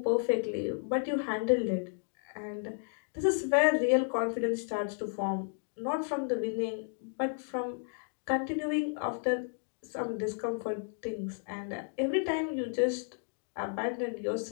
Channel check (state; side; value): silent; right; digital silence